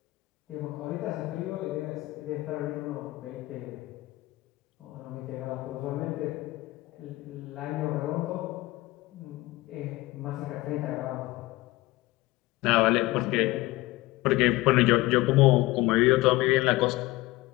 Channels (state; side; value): quieter; right; 19.3 dB